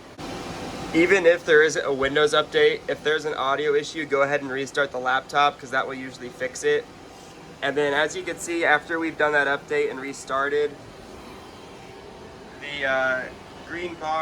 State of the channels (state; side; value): identical; both; correlation 1.00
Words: Even if there isn't a Windows update, if there's an audio issue, go ahead and restart the laptop because that will usually fix it. And then as you can see, after we've done that update and restarted, the green